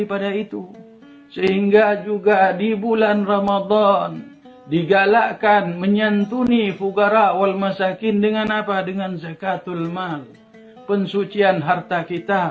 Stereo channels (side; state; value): both; identical; correlation 1.00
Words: itu. Sehingga juga di bulan Ramadan digalakkan menyantuni fugara wal masakin dengan apa? Dengan zakatul mal. Pensucian harta